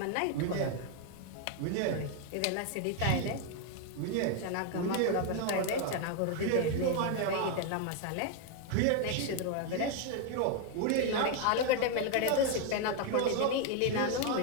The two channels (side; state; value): both; different; correlation 0.01